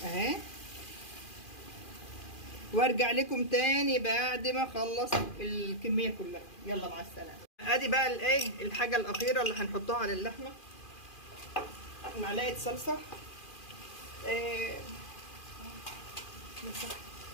اهي. وارجع لكم تاني بعد ما اخلص الكميه كلها. يلا مع السلامه. ادي بقى الايه الحاجه الاخيره اللي هنحطها على اللحمه. معلقه صلصه. إيه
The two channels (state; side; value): late; right; 2.4 ms